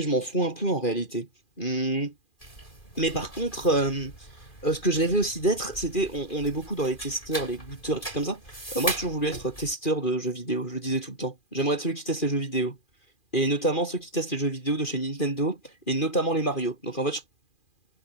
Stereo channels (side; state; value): right; late; 2.4 ms